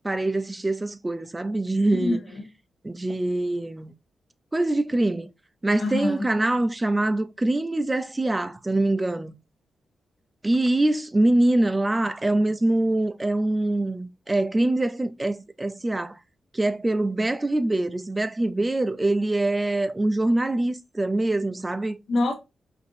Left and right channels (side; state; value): both; normal; correlation 0.98